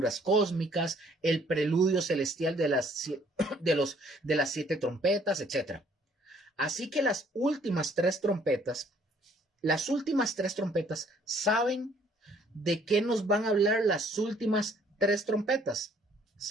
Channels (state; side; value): normal; both; correlation 0.62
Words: cósmicas, el preludio celestial de las 7 trompetas, etc. Así que las últimas tres trompetas, ¿saben de qué nos van a hablar las últimas 3 trompetas?